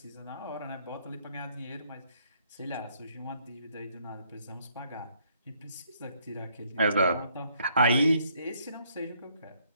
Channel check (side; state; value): both; inverted; correlation -0.68